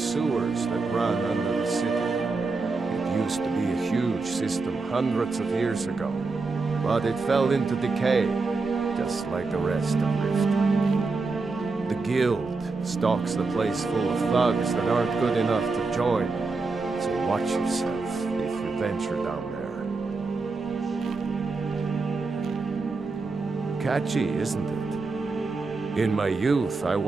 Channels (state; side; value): quieter; left; 4.0 dB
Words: that run under the city. It used to be a huge system hundreds of years ago, but it fell into decay, just like the rest of Rift. The guild stocks the place full of thugs that aren't good enough to join, so watch yourself if you venture down there. Catchy, isn't it? In my youth, I